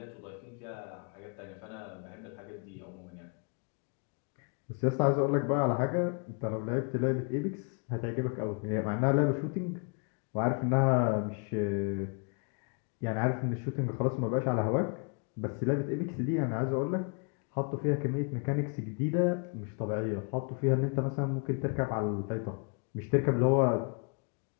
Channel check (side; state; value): right; quieter; 37.8 dB